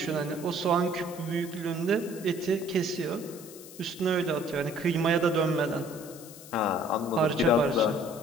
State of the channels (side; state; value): left; noise; hiss, 17 dB below the sound